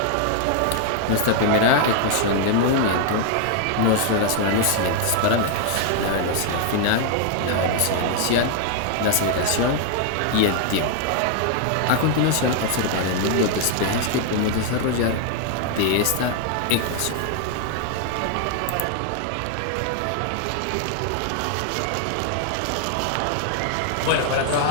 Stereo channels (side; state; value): both; different; correlation 0.00